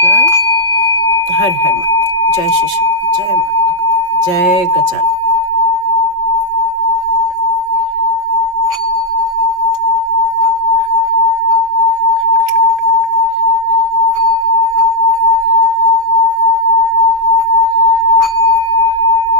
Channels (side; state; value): left; late; 5.1 ms